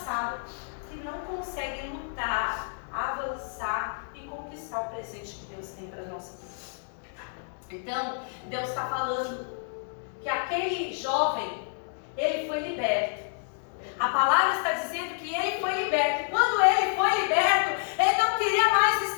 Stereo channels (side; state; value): right; silent; digital silence